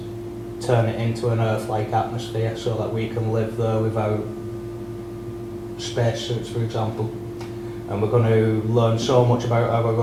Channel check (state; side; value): identical; both; correlation 1.00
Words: turn it into an Earth-like atmosphere so that we can live there without spacesuits, for example. And we're going to learn so much about our